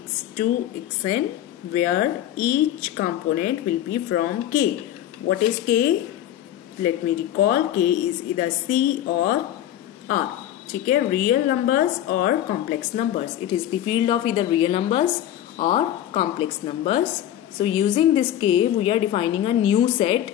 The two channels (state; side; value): quieter; right; 11.9 dB